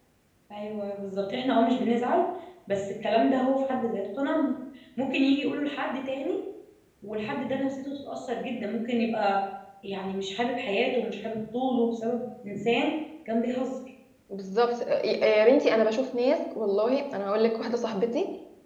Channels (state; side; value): identical; both; correlation 1.00